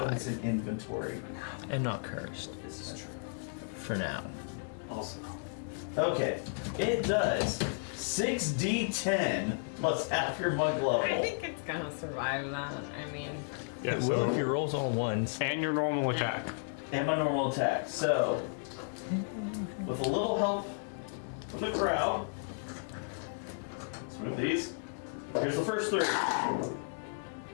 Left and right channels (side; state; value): right; silent; digital silence